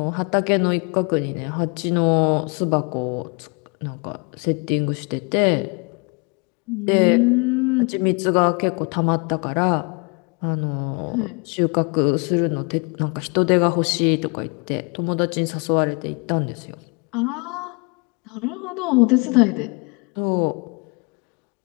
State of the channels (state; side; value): quieter; right; 31.8 dB